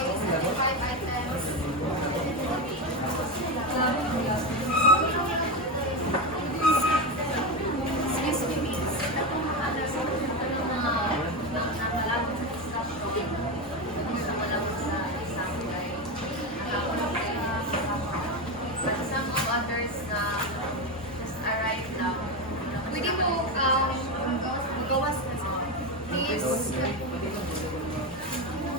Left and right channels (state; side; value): normal; both; correlation 0.15